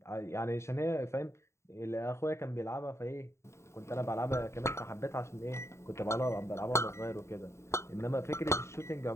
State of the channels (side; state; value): right; late; 0.13 ms